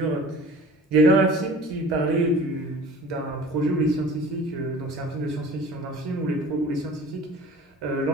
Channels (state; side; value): normal; both; correlation 0.43